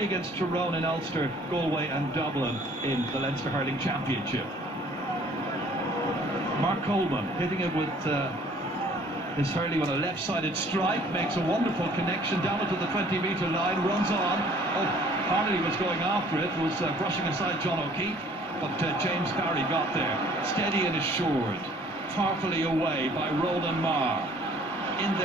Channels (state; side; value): normal; both; correlation 0.55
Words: against Tyrone in Ulster, Galway and Dublin in the Leinster Hurling Championship. Mark Coleman hitting it with his hurley on a left-sided strike, makes a wonderful connection down to the 20-metre line, runs on. Oh, Harley was going after it, was brushing aside John O'Keefe, but James Barry got there. Steady and assured, powerfully away by Roland Marr. In